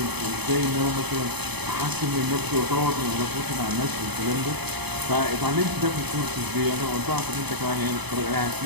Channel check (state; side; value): late; left; 0.99 ms